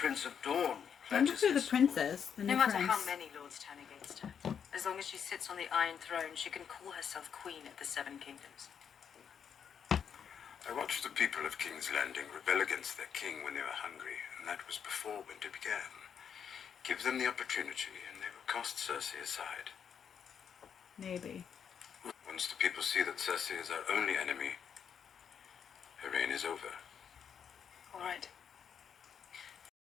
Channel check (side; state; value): right; quieter; 7.6 dB